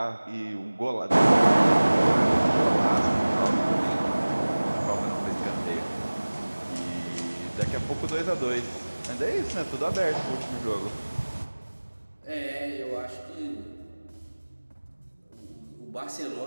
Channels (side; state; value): both; inverted; correlation -1.00